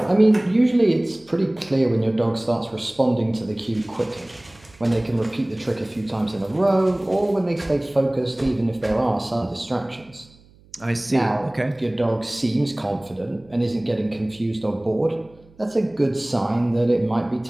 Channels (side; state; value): right; noise; hum, 27 dB below the sound